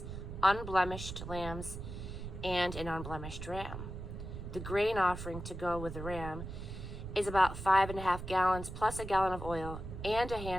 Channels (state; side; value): noise; right; rumble, 8 dB below the sound